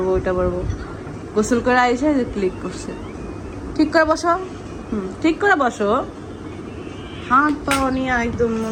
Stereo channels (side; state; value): both; identical; correlation 1.00